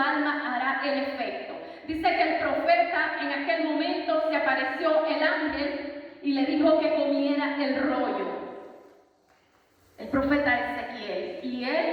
hará el efecto. Dice que el profeta en aquel momento se apareció el ángel y le dijo que comiera el rollo. El profeta Ezequiel. Y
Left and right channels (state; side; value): identical; both; correlation 1.00